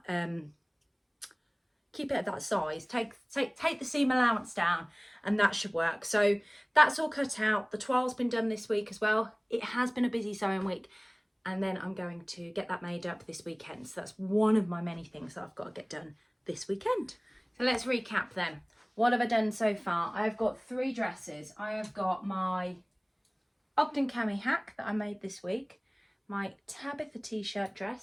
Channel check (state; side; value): identical; both; correlation 1.00